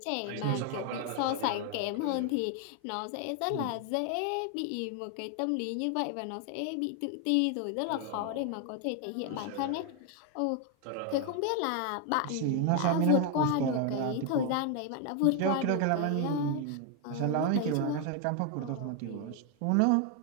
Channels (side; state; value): both; different; correlation 0.01